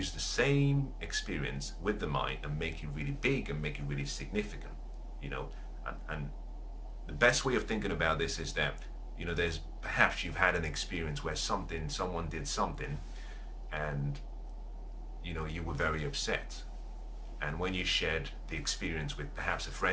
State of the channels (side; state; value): both; identical; correlation 1.00